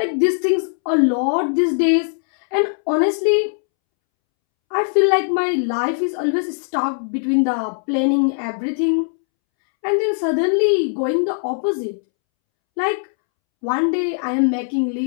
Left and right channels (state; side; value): silent; right; 66 dB below the other